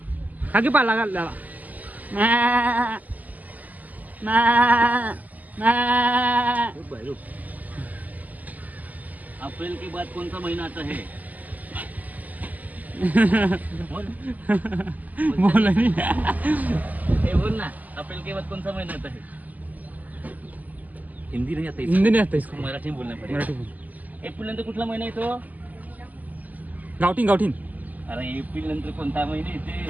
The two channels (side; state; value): left; late; 0.080 ms